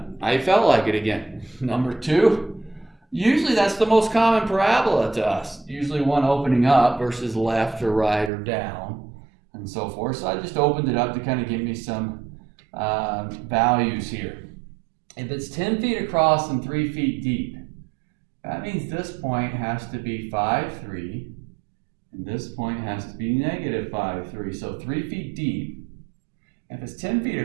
I felt like it again. Number 2, usually that's the most common parabola to us. Usually one opening up versus left or right or down and so forth. So I just opened it up to kind of give me some values here. If it's 10 feet across and 3 feet deep, that means this point has to be 5, 3, and this point has to be negative 5, 3. So 3 feet deep. If it's 10 feet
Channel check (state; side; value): drops out; left; at 8.3 s